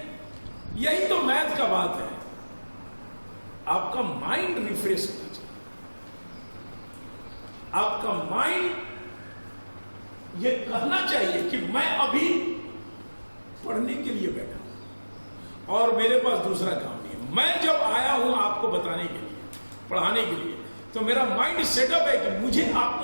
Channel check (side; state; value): both; inverted; correlation -1.00